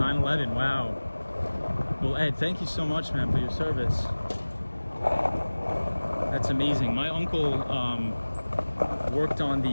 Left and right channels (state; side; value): inverted; both; correlation -1.00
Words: Wow. Well, Ed, thank you so much, man, for your service. That's amazing. My uncle worked on